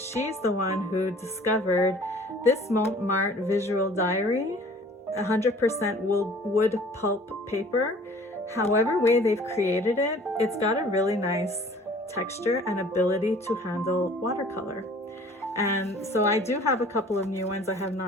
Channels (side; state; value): both; normal; correlation 0.50